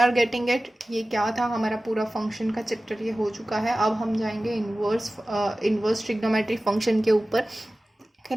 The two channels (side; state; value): both; normal; correlation 0.96